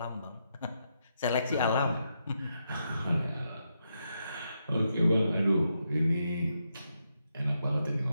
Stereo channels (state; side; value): inverted; both; correlation -0.82